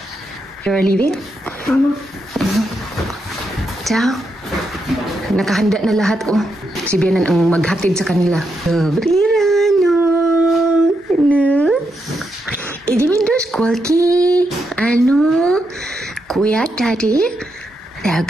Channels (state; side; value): normal; both; correlation 0.83